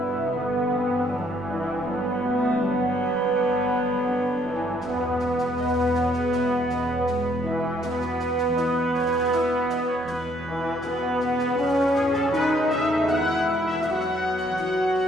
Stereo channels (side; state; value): both; normal; correlation 0.67